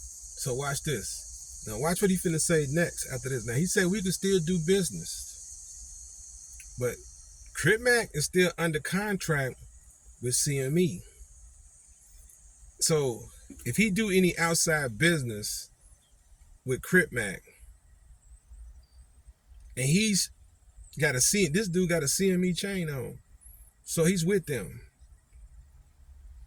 So watch this. Now watch what he finna say next after this. Now he said we can still do business, but CripMac is still under contract with CME. So if he do any outside business with CripMac, and he's got this dude got a CME chain on, so he's with them.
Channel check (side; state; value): both; identical; correlation 1.00